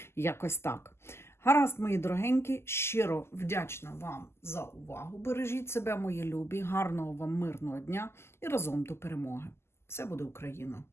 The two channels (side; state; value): right; late; 0.12 ms